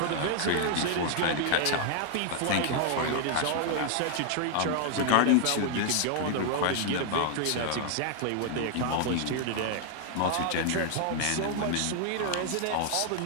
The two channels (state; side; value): different; both; correlation 0.00